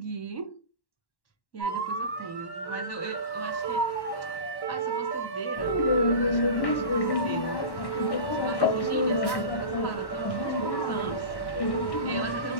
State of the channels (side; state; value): right; late; 1.1 ms